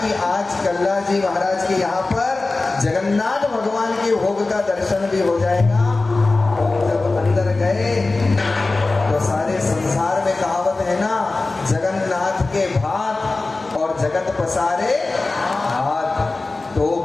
आज कल्ला जी महाराज के यहाँ पर जगन्नाथ भगवान के भोग का दर्शन भी हो जाएगा। जब अंदर गए तो सारे संसार में कहावत है ना, जगन्नाथ के भात और जगत पसारे हाथ, तो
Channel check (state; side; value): quieter; right; 3.4 dB